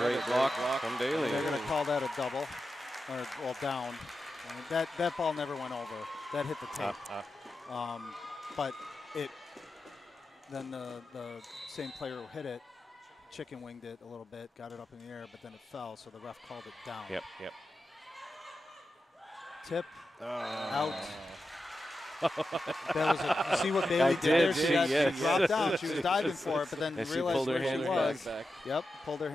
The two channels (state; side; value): normal; both; correlation 0.90